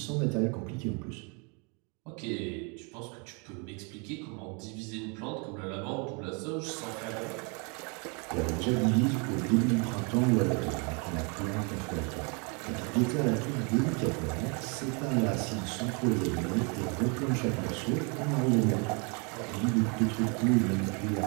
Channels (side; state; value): left; quieter; 33.8 dB